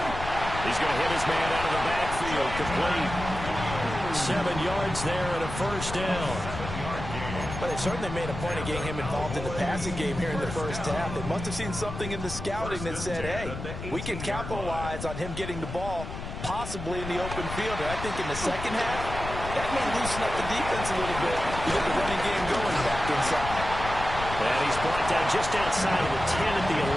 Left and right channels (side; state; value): left; noise; rumble, 8 dB below the sound